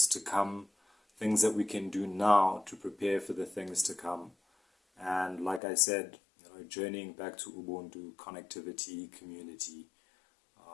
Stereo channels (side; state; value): right; drops out; at 5.6 s